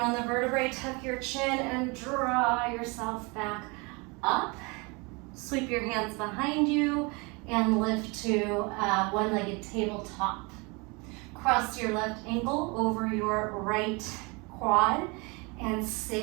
the vertebrae. Tuck your chin and draw yourself back up. Sweep your hands behind you and lift to one-legged tabletop. Cross your left ankle over your right quad and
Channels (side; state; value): left; quieter; 28.7 dB